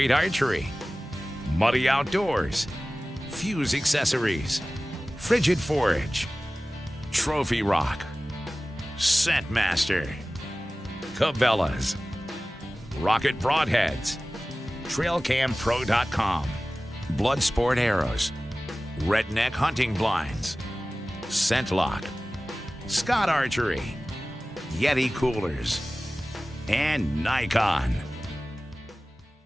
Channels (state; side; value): normal; both; correlation 0.97